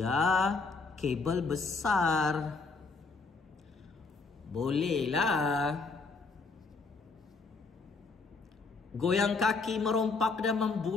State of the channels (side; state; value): right; quieter; 4.1 dB